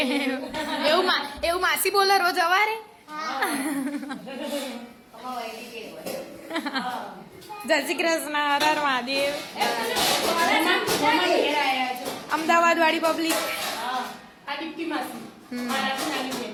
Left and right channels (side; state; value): both; identical; correlation 1.00